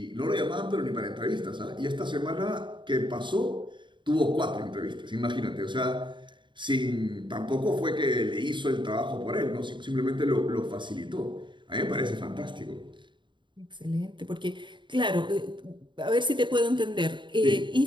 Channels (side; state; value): left; late; 0.23 ms